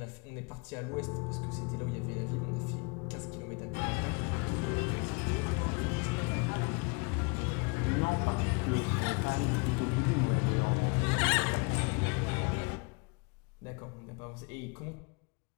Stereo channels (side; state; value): right; quieter; 29.8 dB